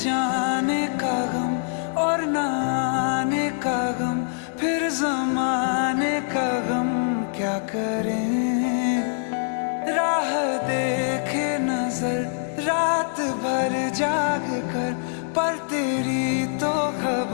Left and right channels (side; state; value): right; silent; digital silence